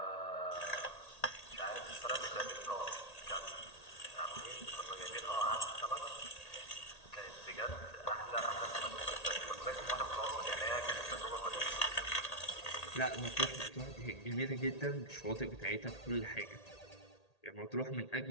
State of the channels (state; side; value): late; right; 1.8 ms